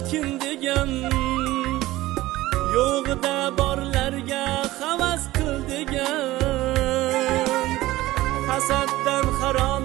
kim degan, yo'g'ida borlarga havas qil degan, hasaddan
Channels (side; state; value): left; quieter; 17.3 dB